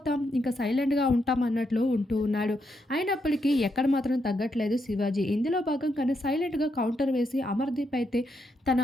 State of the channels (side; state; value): both; normal; correlation 0.80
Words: ఇంకా సైలెంట్‌గా ఉంటాం అన్నట్లు ఉంటూ ఉన్నాడు. అయినప్పటికీ ఎక్కడ మాత్రం తగ్గట్లేదు శివాజీ. ఇందులో భాగంగానే సైలెంట్‌గా కౌంటర్ వేసి అమర్‌దీప్ అయితే తన